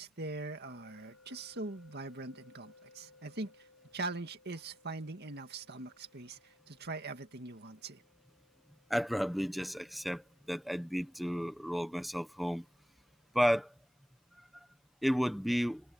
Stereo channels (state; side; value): normal; both; correlation 0.88